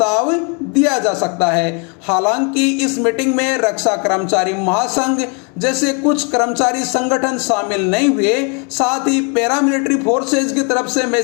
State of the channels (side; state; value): right; quieter; 35.4 dB